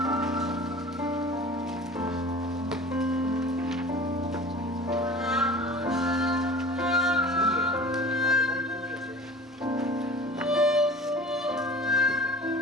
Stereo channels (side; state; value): both; normal; correlation 0.41